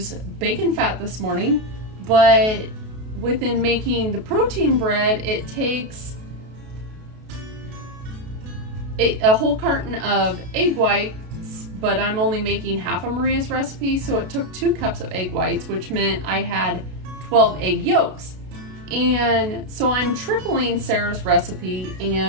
bacon fat this morning, but within making the protein bread, it takes a whole carton of egg whites, but I'm only making half of Maria's recipe, so it took 2 cups of egg whites, which meant I had 12 egg yolks. And so I'm tripling Sarah's recipe,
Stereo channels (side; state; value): left; late; 32 ms